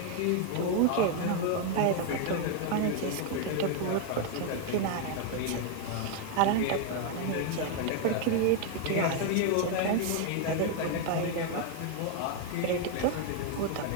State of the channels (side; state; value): both; different; correlation 0.00